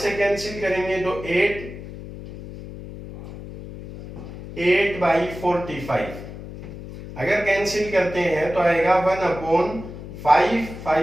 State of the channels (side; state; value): left; noise; hum, 12 dB below the sound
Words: कैंसिल करेंगे तो 8 बाई 45, अगर कैंसिल करते हैं तो आएगा 1 अपॉन 5,